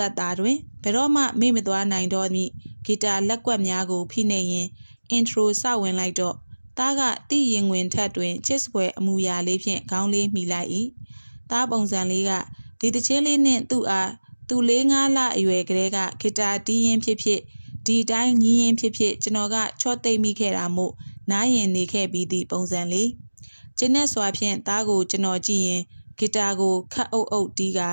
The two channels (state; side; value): inverted; both; correlation -1.00